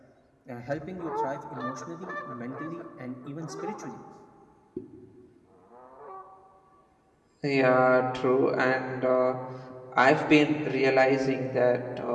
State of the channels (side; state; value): both; identical; correlation 1.00